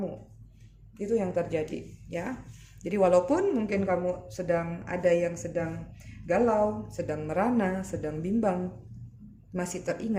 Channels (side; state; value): both; identical; correlation 1.00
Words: Itu yang terjadi ya. Jadi walaupun mungkin kamu sedang galau, sedang merana, sedang bimbang, masih